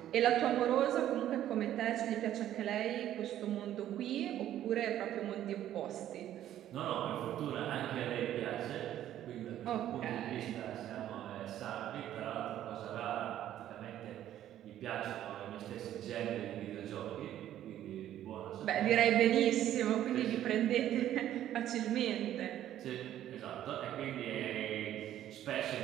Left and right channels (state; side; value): quieter; left; 12.0 dB